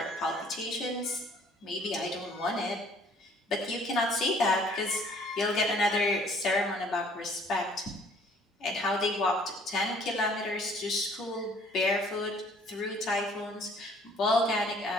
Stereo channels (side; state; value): both; normal; correlation 0.58